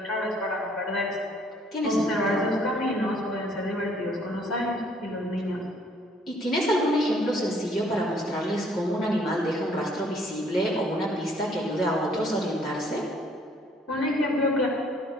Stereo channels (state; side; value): normal; both; correlation 0.62